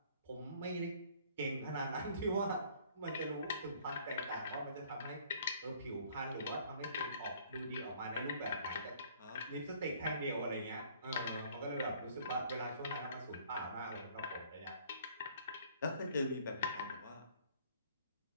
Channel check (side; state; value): both; inverted; correlation -0.57